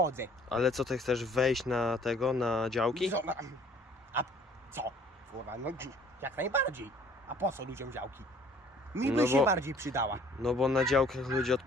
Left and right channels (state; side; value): normal; both; correlation 0.55